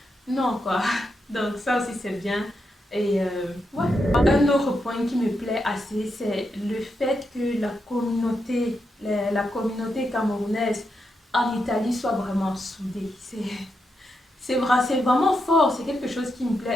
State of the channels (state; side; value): normal; both; correlation 0.84